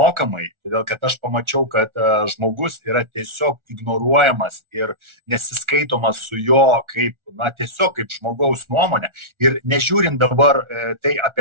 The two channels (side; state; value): left; late; 1.4 ms